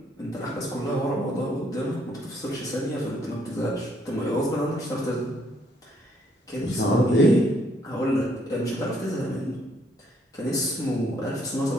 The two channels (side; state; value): both; normal; correlation 0.68